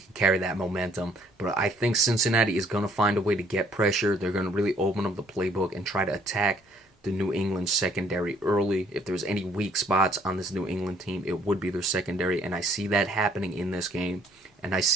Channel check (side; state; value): both; normal; correlation 0.63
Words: carry that momentum. But I think Cincinnati is going to find a way to get pressure. They're going to really open up the playbook and try to attack the New England secondary early. If there's any weak spots on this New England team, it would be their secondary. And I see that happening in this game. And I